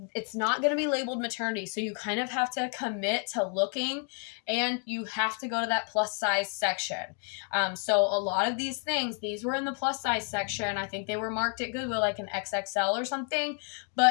it's not going to be labeled maternity, so you kind of have to commit to looking, and you have to go to that plus size section. So a lot of these things, these were in the plus size section. I think they were marked at Goodwill like an XXL or something,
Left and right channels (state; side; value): quieter; right; 39.5 dB